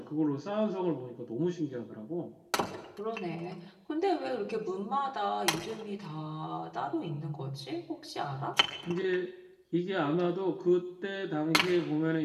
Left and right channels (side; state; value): both; identical; correlation 1.00